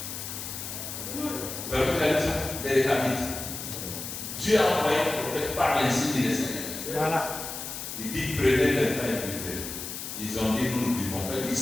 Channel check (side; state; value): left; noise; hiss, 7 dB below the sound